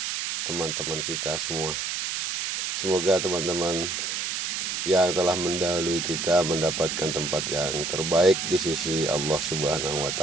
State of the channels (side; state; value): right; noise; hiss, 2 dB below the sound